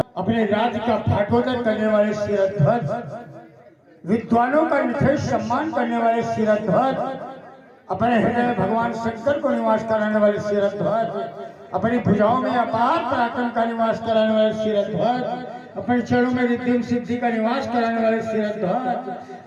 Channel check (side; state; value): both; identical; correlation 1.00